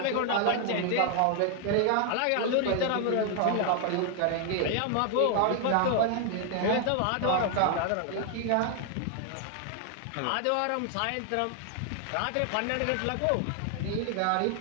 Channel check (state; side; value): different; both; correlation 0.00